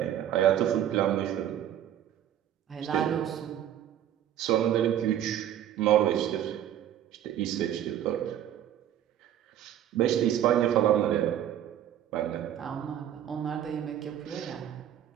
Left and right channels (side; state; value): left; quieter; 10.9 dB